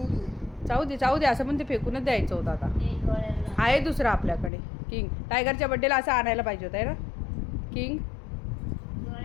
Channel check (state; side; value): drops out; right; at 4.5 s